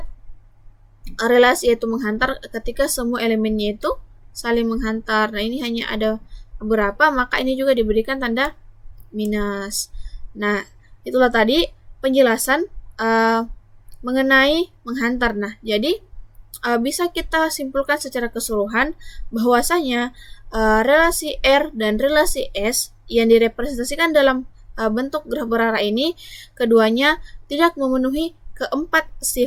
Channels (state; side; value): identical; both; correlation 1.00